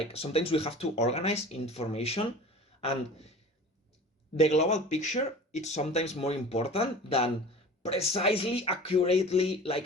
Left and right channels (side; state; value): both; normal; correlation 0.39